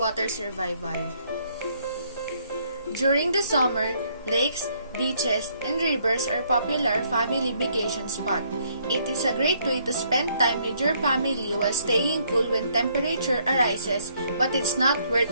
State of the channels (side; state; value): both; inverted; correlation -0.68